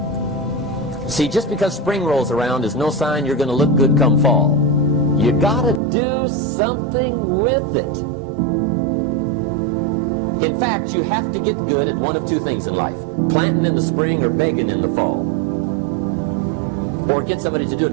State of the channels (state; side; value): drops out; left; at 5.8 s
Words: See, just because spring rolls around is no sign you're going to look good come fall. You got to do something with it. In fact, you have to get good at one of two things in life. Planting in the spring or begging in the fall. Or get somebody to do it